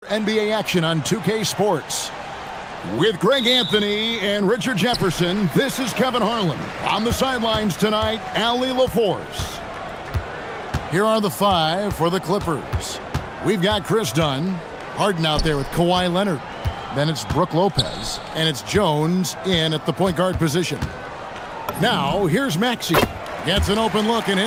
NBA action on 2K Sports. With Greg Anthony and Richard Jefferson, this is Kevin Harlan. On the sidelines tonight, Allie LaForce. Here are the five for the Clippers. We've got Chris Dunn, Harden out there with Kawhi Leonard. Then it's Brooke Lopez, and it's Jones in at the point guard position. Now, here's Maxey. Gets an open look and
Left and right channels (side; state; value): both; identical; correlation 1.00